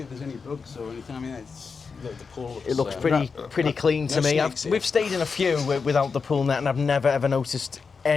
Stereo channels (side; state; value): right; quieter; 5.2 dB